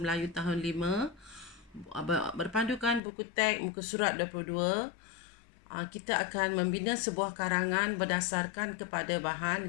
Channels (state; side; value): drops out; right; at 3.0 s